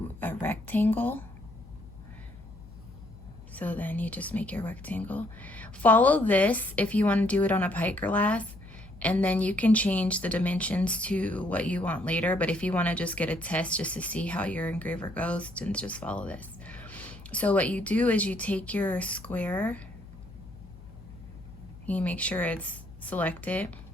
a rectangle. So then you just make your rectangle. Follow this if you want to do it on a pint glass, and then you can change the dimensions to what you want later. But if you want to just get a test just to see how your engraver goes, then just follow this. So what you do is you take your square, you make sure it's selected,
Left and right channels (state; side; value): noise; left; hum, 18 dB below the sound